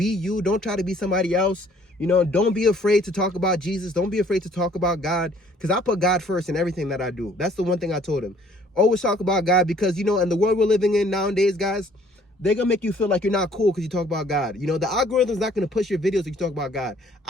you. Don't try to be somebody else. You know, don't be afraid to talk about Jesus. Don't be afraid to talk about God, because I put God first in everything that I do. That's the one thing I told him. Always talk about God, because, you know, in the world we're living in nowadays, guys, they're going to make you feel like you're not cool because you talk about God. You know, the algorithm's not going to push your videos if you talk about God.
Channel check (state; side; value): normal; both; correlation 0.59